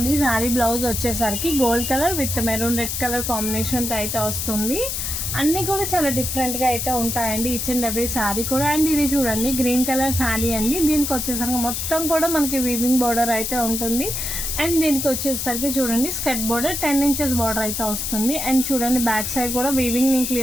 శారీ బ్లౌజ్ వచ్చేసరికి gold colour with maroon red colour కాంబినేషన్తో అయితే వస్తుంది. అన్నీ కూడా చాలా డిఫరెంట్గా అయితే ఉంటాయండి ఈచ్ అండ్ ఎవ్రీ శారీ కూడా. అండ్ ఇది చూడండి గ్రీన్ కలర్ శారీ అండి. దీనికి వచ్చేసరికి మొత్తం కూడా మనకి వీవింగ్ బార్డర్ అయితే ఉంటుంది. అండ్ దీనికి వచ్చేసరికి చూడండి స్కర్ట్ బార్డర్ 10 ఇంచెస్ బార్డర్ అయితే వస్తుంది. అండ్ చూడండి బ్యాక్ సైడ్ కూడా వీవింగ్ నేను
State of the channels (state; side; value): noise; left; hiss, 3 dB below the sound